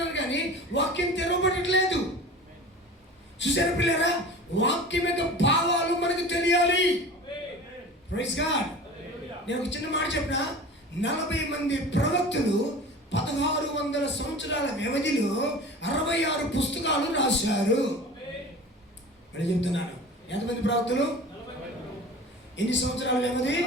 కానీ వాక్యం తెరవబడట్లేదు. చూసారా పిల్లరా? వాక్యం యొక్క భావాలు మనకు తెలియాలి. Praise God. నేను ఒక చిన్న మాట చెప్పిన, 40 మంది ప్రవక్తలు 1600 సంవత్సరాల వ్యవధిలో 66 పుస్తకాలు రాశారు. మరి చెప్తున్నాను, ఎంతమంది ప్రవక్తలు? ఎన్ని సంవత్సరాల వ్యవధి?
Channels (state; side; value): normal; both; correlation 0.37